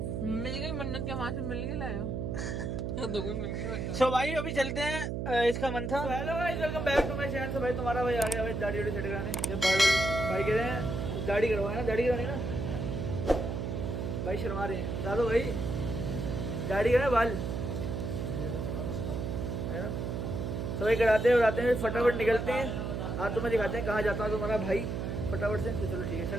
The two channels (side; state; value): right; noise; hum, 3 dB below the sound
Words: मिल गई मन्नत के, वहां से मिल के लाए हो। सो भाई अभी चलते हैं, इसका मन था। Hello guys, welcome back to my channel. भाई तुम्हारा भाई आ गया भाई दाढ़ी वाड़ी सेट कराने। ये भाई कह रहे हैं दाढ़ी करवाए ना, दाढ़ी करवानी ना भाई, शर्मा रहे हैं बता दो भाई, दाढ़ी करना बाल है ना। तो भाई कराते हैं फटाफट निकलते हैं। आज तुम्हें दिखाते हैं कहाँ जाता है तुम्हारा भाई फटाफट से। तो चलो ठीक है,